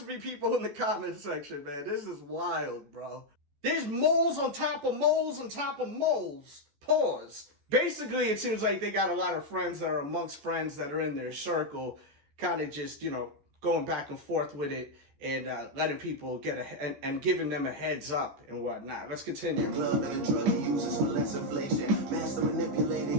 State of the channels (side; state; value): left; late; 14 ms